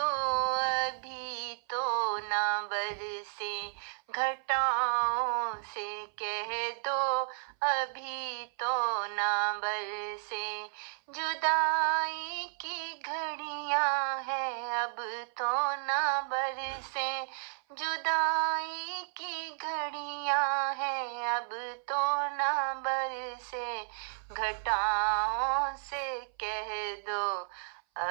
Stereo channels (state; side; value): silent; left; 56 dB below the other